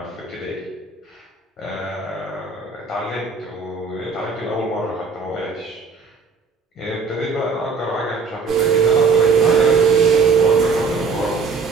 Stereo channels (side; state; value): left; quieter; 4.8 dB